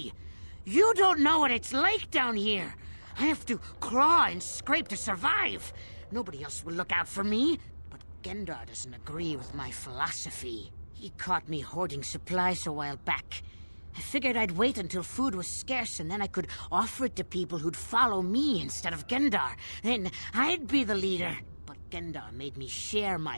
You don't know what it's like down here! I have to claw and scrape to survive! Nobody else will look out for me. But Gendar doesn't agree with my philosophy. He caught me hoarding supplies a while back. I figured I'd wait until food was scarce and then I could offer it to people who'd follow me instead of Gendar. Then I'd be the leader. But Gendar made me share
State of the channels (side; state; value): both; inverted; correlation -1.00